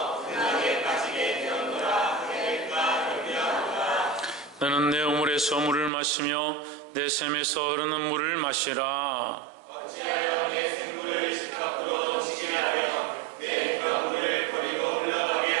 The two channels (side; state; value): left; drops out; at 5.9 s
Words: 너는 내 우물에서 물을 마시며 내 샘에서 흐르는 물을 마시라. 어찌하여 내 생물을 집 밖으로 던지게 하며 내 물을 버리고 흘러가게